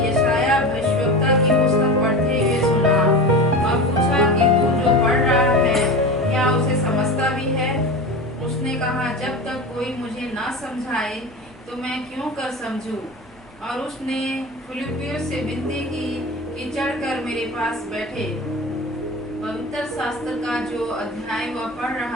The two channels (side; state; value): both; normal; correlation 0.28